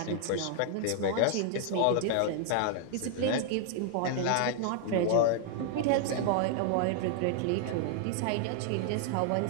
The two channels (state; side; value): different; both; correlation 0.00